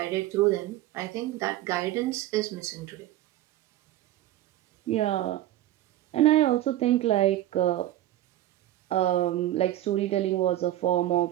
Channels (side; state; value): left; quieter; 14.1 dB